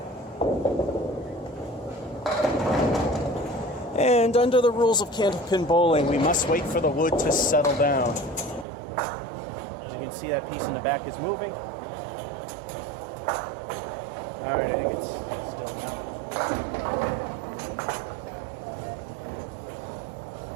And under the rules of candlepin bowling, we must wait for the wood to settle down. As you can see, that piece in the back is moving. Alright, I think it's still now.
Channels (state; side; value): drops out; left; at 8.7 s